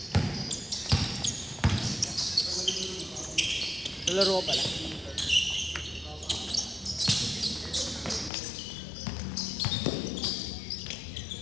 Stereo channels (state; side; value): drops out; right; at 8.3 s